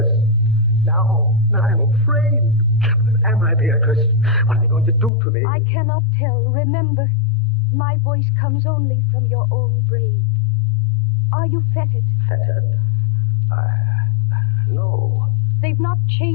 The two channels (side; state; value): right; drops out; at 5.1 s